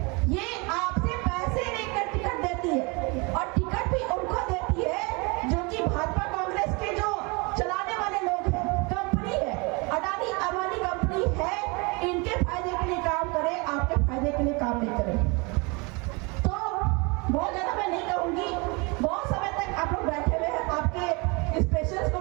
ये आपसे पैसे लेकर टिकट देती है, और टिकट भी उनको देती है जो कि भाजपा कांग्रेस के जो चलाने वाले लोग हैं, कंपनी है, अडानी अंबानी कंपनी है, इनके फायदे के लिए काम करे, आपके फायदे के लिए काम नहीं करे। तो बहुत ज्यादा मैं नहीं कहूंगी, बहुत समय तक आप लोग बैठे हुए हैं, आपके स्पेशल्स को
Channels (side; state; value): left; quieter; 28.9 dB